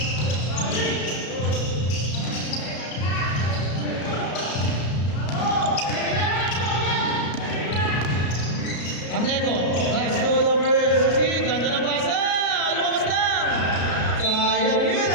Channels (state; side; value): late; right; 33 ms